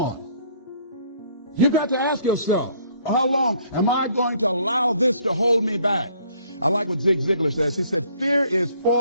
you've got to ask yourself, how long am I going to allow this to hold me back? I like what Zig Ziglar says. He said, fear is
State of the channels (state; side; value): inverted; both; correlation -0.62